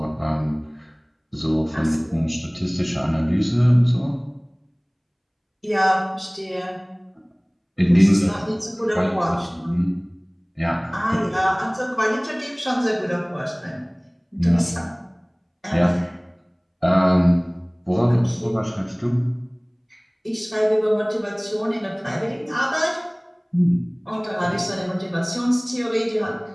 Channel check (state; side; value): identical; both; correlation 1.00